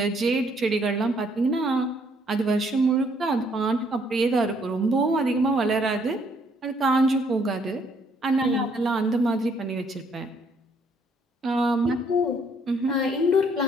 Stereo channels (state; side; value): normal; both; correlation 0.67